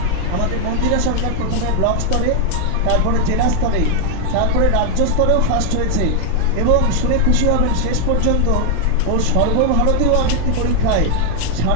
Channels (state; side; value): different; both; correlation 0.00